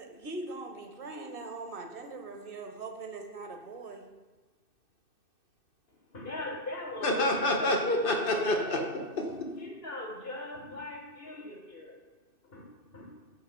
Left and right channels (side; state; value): right; late; 2.6 ms